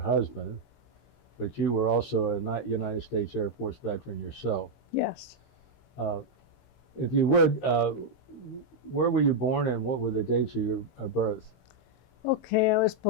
but you were also a United States Air Force veteran yourself. Yes. If you would, where were you born and what were the dates of your birth? Okay, I was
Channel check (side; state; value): right; late; 16 ms